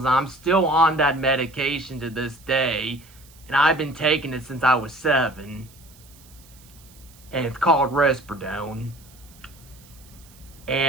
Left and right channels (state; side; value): noise; right; hiss, 25 dB below the sound